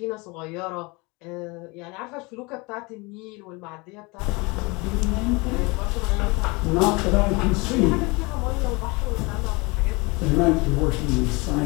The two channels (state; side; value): quieter; right; 26.6 dB